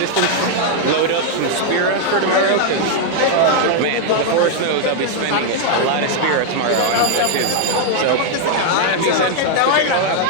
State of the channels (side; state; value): both; different; correlation 0.00